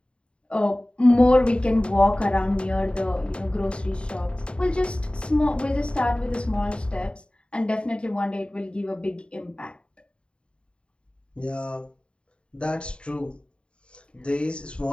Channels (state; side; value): late; right; 0.055 ms